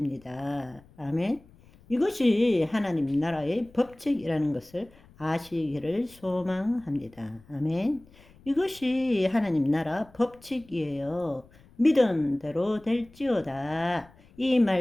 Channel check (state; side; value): noise; left; rumble, 26 dB below the sound